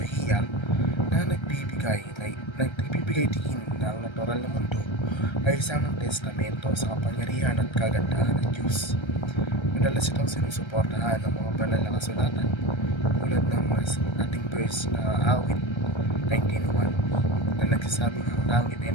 na nagbibigay diin na ang natural na mundo ay isang testamento sa kapangyarihan at kagandahan ng Diyos. Madalas itong sinusuportahan ng mga banal na kasulatan tulad ng ating verse na awit 19:1 na nagsasabing ang langit ay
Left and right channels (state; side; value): late; right; 1.3 ms